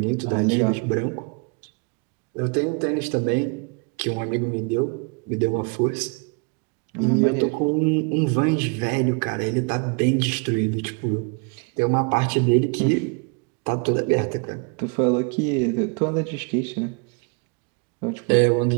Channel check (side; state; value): left; quieter; 34.2 dB